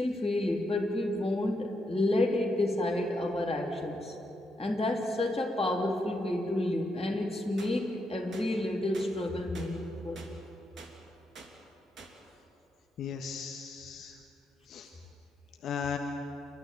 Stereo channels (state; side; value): normal; both; correlation 0.82